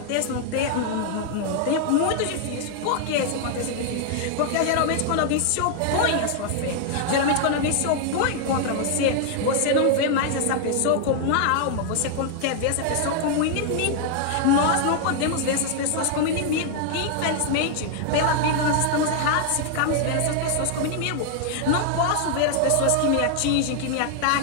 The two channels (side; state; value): both; different; correlation 0.00